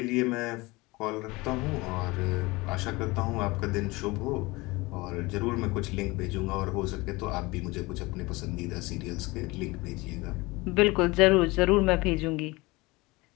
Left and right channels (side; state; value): right; quieter; 22.9 dB